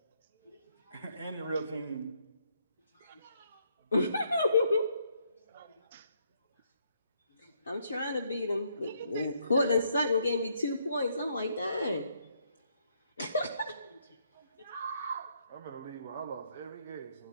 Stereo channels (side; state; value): both; inverted; correlation -0.72